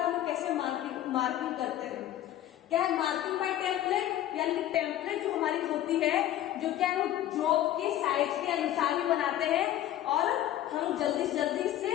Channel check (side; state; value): right; quieter; 12.6 dB